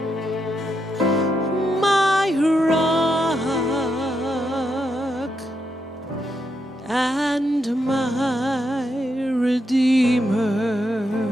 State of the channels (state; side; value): normal; both; correlation 0.82